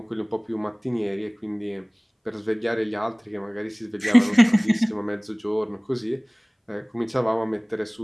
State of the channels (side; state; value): both; identical; correlation 1.00